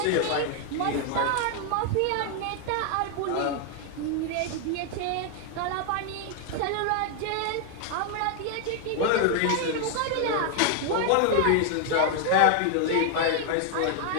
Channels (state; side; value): different; both; correlation 0.00